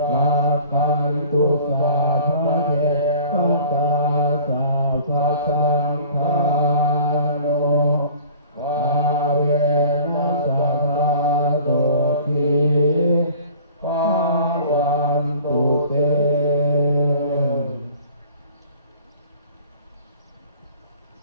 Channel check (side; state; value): both; inverted; correlation -0.47